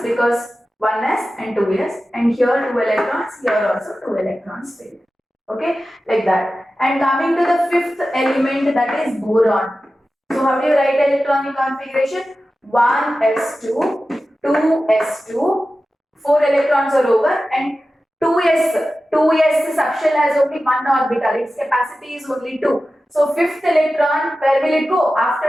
because 1s and 2s, and here 2 electrons, here also 2 electrons filled. Okay, like that. And coming to the fifth element, that is boron. So how do you write electronic configuration? 1s2, 2s2, 4 electrons are over, and 2s subshell has only one orbital, its capacity is only 2. So fifth electron, where will it go?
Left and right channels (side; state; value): both; normal; correlation 0.94